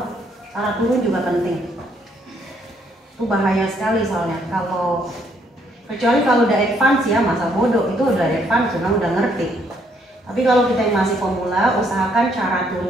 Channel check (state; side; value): normal; both; correlation 0.69